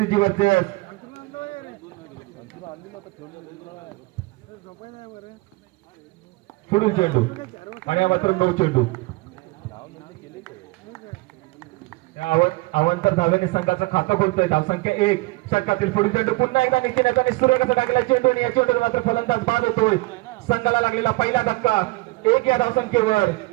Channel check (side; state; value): left; quieter; 23.1 dB